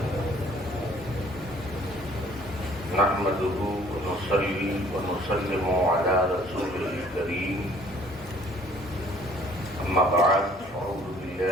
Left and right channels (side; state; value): both; normal; correlation 0.57